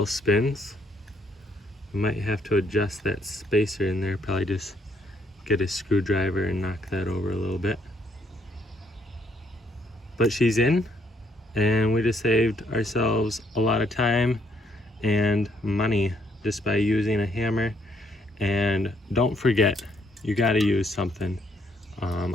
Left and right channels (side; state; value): both; normal; correlation 0.70